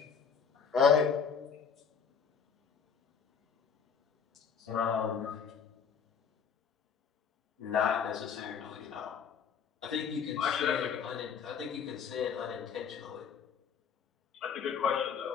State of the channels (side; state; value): right; quieter; 6.7 dB